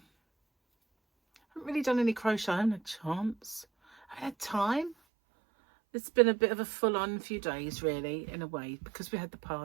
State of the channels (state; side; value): drops out; left; at 5.0 s